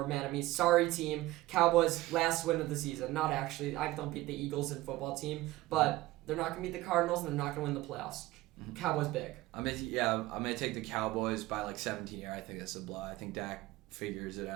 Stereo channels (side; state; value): left; quieter; 18.1 dB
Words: mad at me. Sorry, team. Cowboys, last win of the season. Not actually. I don't beat the Eagles in football team, but they're not going to beat the Cardinals, and they're not going to win the playoffs. Cowboys big. I'm gonna take the Cowboys by like 17 here. I think that's a blowout. I think Dak figures it